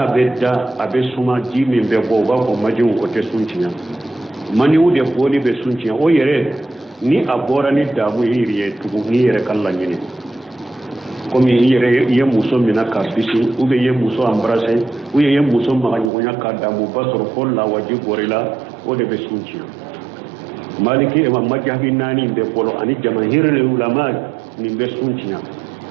bedda abe suma ji min be bo ba ko majiwu ko te sunci mani wude boli be sunci o yere ni abora ni damu yiriye tugu ni yere kallan yini komi yere ye muso mina ka bisi ube ye muso embrasser ou ye muso maganyonya ka damu basoro ko la waji gorila o de be sunci maliki e majhabi nani be bolo ani jamahirul ulama ni be sunci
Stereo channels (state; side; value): drops out; left; at 16.1 s